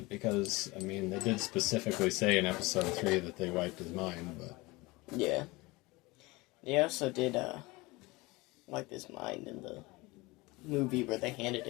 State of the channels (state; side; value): quieter; right; 22.8 dB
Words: because I mean they did specifically say in Episode 3 that they wiped his mind, but yeah, they also did wipe his mind in the movie where they handed